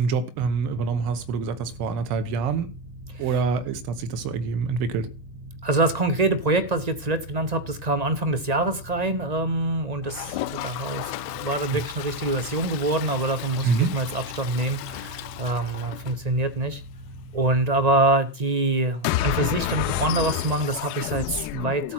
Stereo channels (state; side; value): late; left; 1.9 ms